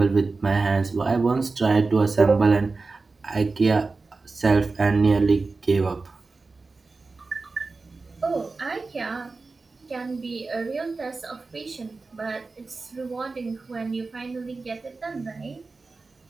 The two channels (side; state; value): left; quieter; 3.9 dB